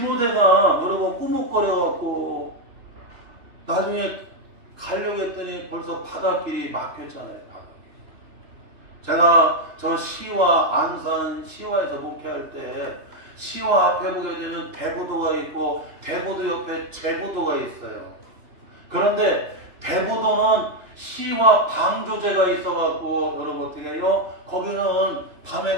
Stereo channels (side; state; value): left; late; 2.9 ms